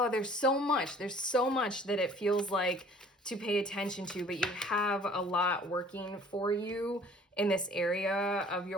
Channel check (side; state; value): both; normal; correlation 0.52